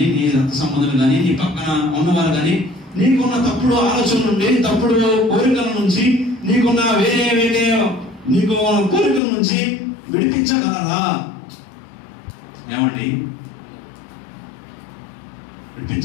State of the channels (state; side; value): drops out; right; at 9.2 s